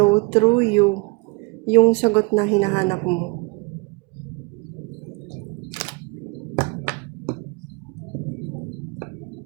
through you yung sagot na hinahanap mo.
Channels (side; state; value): left; quieter; 28.9 dB